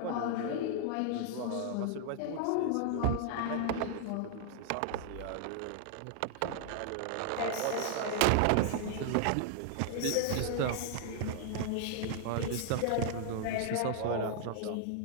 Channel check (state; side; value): different; both; correlation -0.01